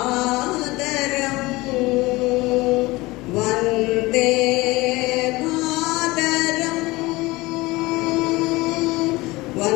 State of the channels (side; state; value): right; quieter; 21.3 dB